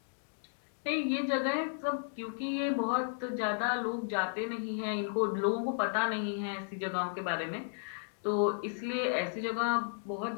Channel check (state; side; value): silent; right; digital silence